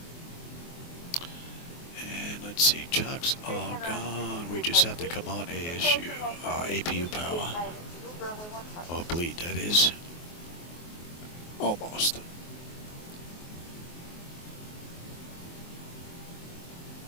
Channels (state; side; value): late; right; 24 ms